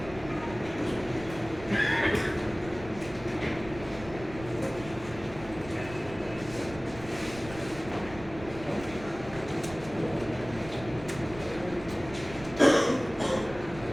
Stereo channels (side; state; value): right; noise; rumble, 15 dB below the sound